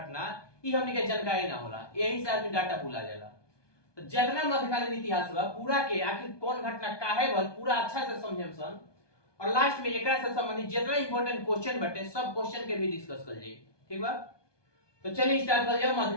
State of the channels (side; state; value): right; late; 1.2 ms